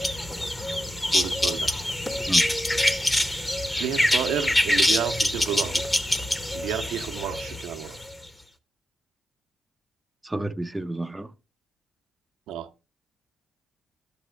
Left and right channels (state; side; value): normal; both; correlation 0.88